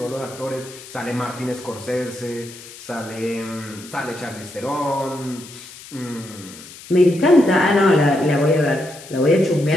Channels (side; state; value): left; noise; hiss, 17 dB below the sound